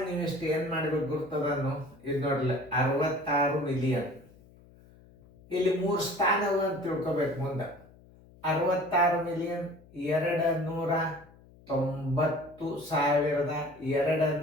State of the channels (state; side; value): noise; left; hum, 25 dB below the sound